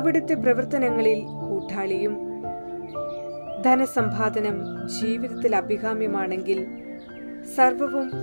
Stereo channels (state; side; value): inverted; both; correlation -1.00